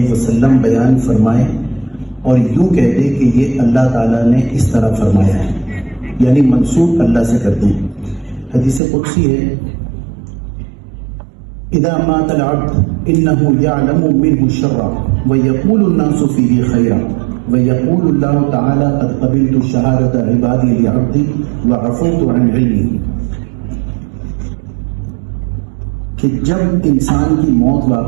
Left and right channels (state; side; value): drops out; left; at 8.8 s